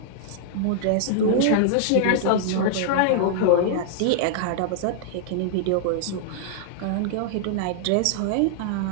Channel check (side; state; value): both; different; correlation -0.01